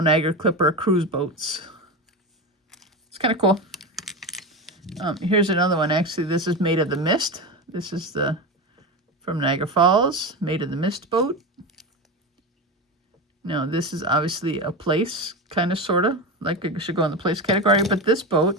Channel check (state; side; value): normal; both; correlation 0.20